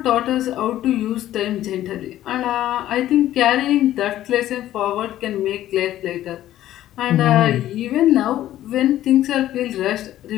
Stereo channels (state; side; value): quieter; right; 13.3 dB